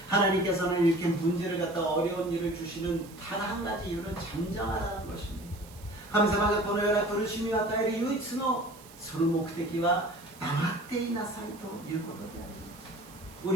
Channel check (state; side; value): noise; right; hiss, 21 dB below the sound